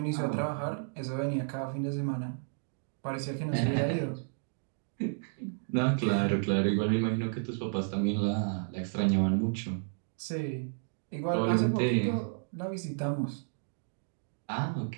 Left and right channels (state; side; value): silent; left; digital silence